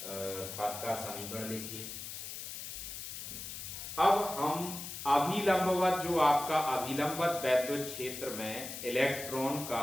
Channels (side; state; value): left; noise; hiss, 8 dB below the sound